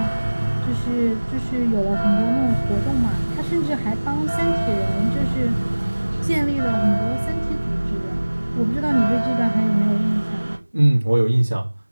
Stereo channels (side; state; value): both; inverted; correlation -1.00